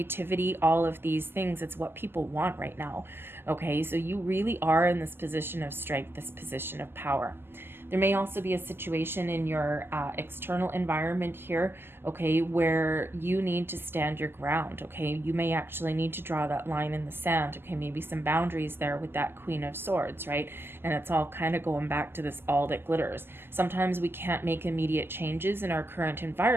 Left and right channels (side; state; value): left; late; 0.11 ms